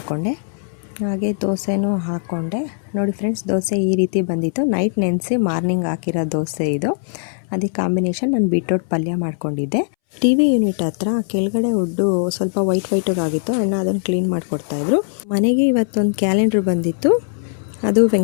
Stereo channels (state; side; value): silent; right; 65 dB below the other